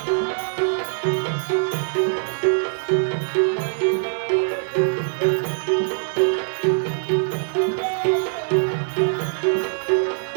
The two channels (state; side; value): silent; left; digital silence